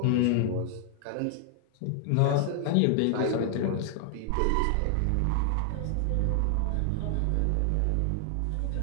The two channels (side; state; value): both; different; correlation 0.00